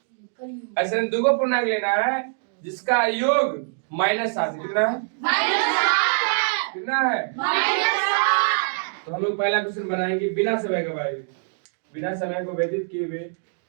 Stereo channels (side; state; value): left; silent; digital silence